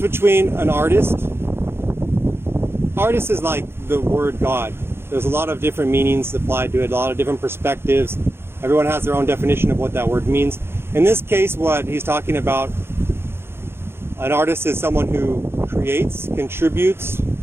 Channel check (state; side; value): late; left; 0.11 ms